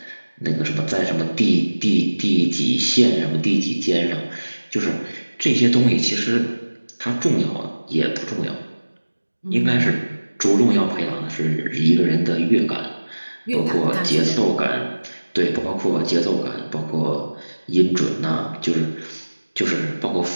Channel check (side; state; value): both; inverted; correlation -1.00